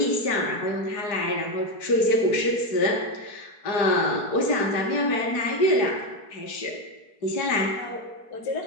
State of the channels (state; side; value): late; right; 4.7 ms